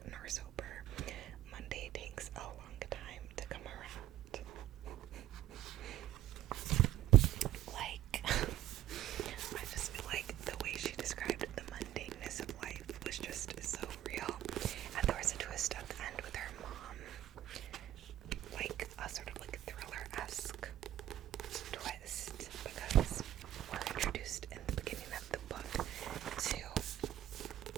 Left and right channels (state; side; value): quieter; left; 12.6 dB